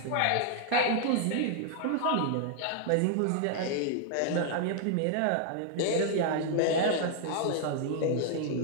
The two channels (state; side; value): different; both; correlation 0.00